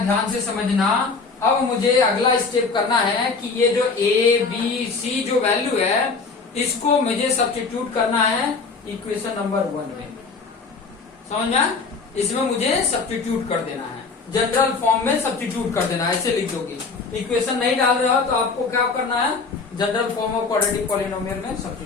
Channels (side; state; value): right; quieter; 4.5 dB